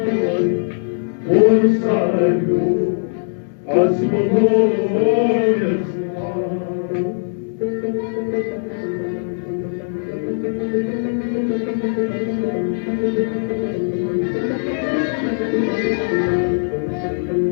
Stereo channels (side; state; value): right; silent; digital silence